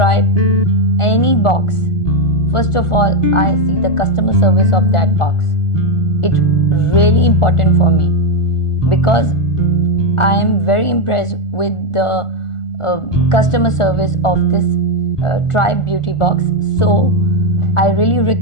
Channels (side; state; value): right; late; 1.4 ms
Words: any box, first of all I see the customer service of that box. It's really important for me because I am very impressed with the customer service of this Tribe Beauty box. So I really